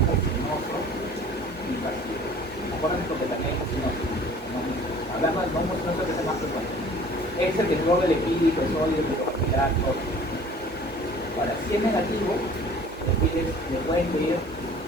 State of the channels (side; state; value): both; normal; correlation 0.49